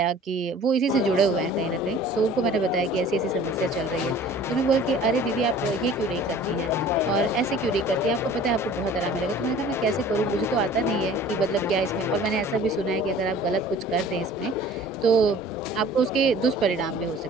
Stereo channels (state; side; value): normal; both; correlation 0.48